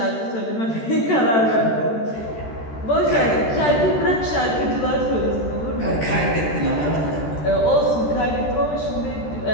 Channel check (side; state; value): right; late; 13 ms